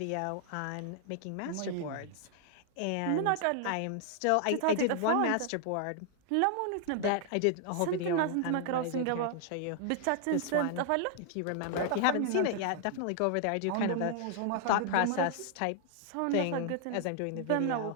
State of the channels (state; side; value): different; both; correlation 0.00